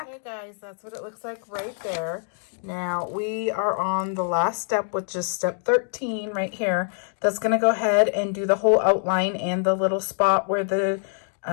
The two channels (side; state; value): right; silent; 62 dB below the other